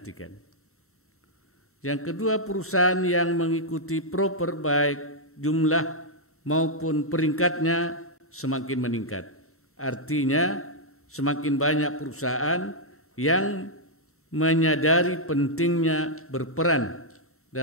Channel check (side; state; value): both; normal; correlation -0.05